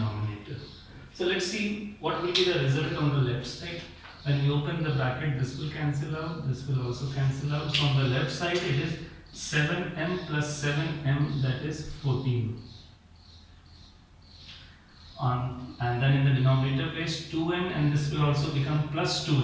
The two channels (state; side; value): identical; both; correlation 1.00